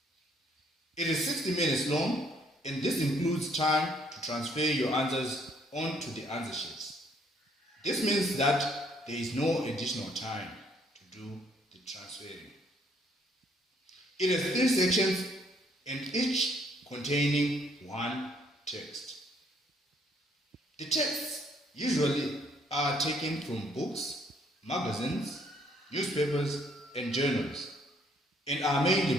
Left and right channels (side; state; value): both; normal; correlation 0.66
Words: It is 60 minutes long, and this includes time to transfer your answers onto the answer sheets. This means that there is no additional time to do the transferring. It has 3 sections, and each containing 1 text. The texts usually are taken from books, magazines, newspapers, and journals, and are